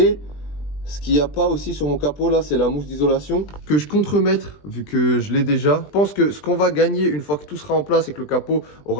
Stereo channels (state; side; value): late; right; 20 ms